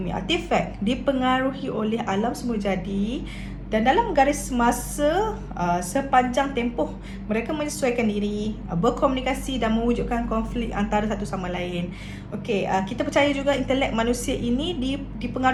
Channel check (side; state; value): both; identical; correlation 1.00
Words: artifak dipengaruhi oleh alam semula jadi, dan dalam garis masa sepanjang tempoh mereka menyesuaikan diri, berkomunikasi dan mewujudkan konflik antara satu sama lain. Okey, kita percaya juga intelek manusia ini